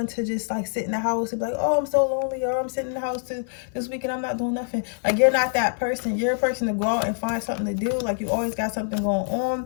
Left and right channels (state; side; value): silent; right; 58 dB below the other